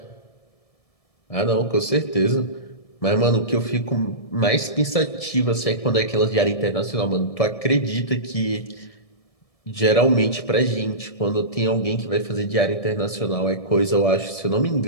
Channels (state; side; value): late; right; 1.7 ms